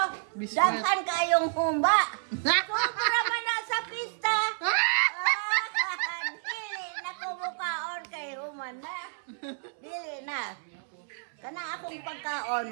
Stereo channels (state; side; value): silent; left; 58 dB below the other